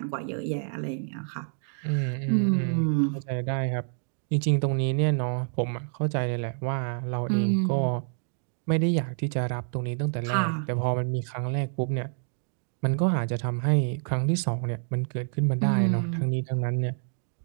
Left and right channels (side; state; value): left; silent; 60 dB below the other